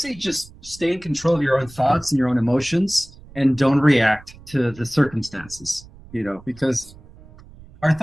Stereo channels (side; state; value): right; noise; rumble, 21 dB below the sound